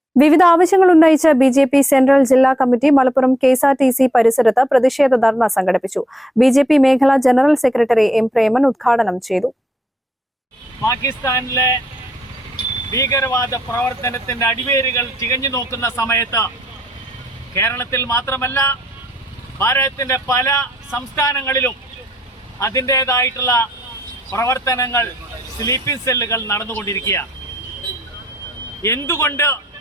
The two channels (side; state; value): both; normal; correlation 0.75